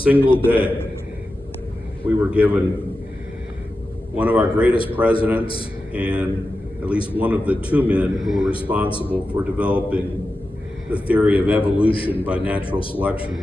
day, we were given one of our greatest presidents and at least one of the 2 men who were responsible for developing the theory of evolution by natural selection,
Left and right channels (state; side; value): normal; both; correlation 0.92